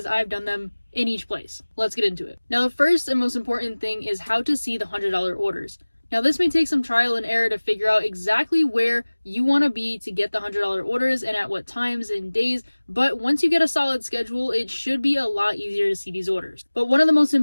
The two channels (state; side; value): inverted; both; correlation -1.00